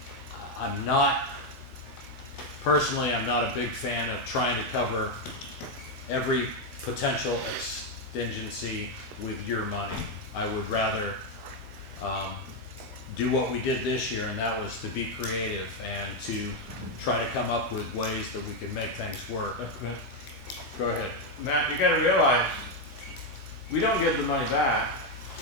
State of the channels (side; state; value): both; normal; correlation 0.04